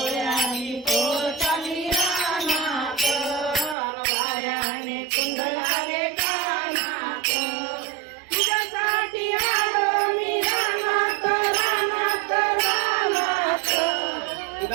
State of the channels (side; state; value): left; drops out; at 3.8 s